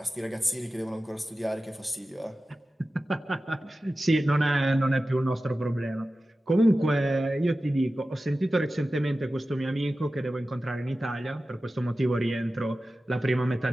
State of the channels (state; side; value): normal; both; correlation 0.95